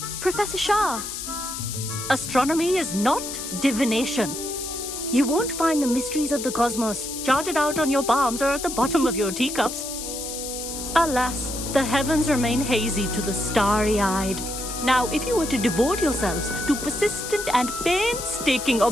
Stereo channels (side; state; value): left; noise; hiss, 7 dB below the sound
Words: Professor Shah. Astronomy is not divination. You won't find the mysteries of the cosmos charted out on your palms or at the bottom of your teacups. Alas, the heavens remain hazy to the starry-eyed. Now, if you were to devote yourselves to persistent and painstaking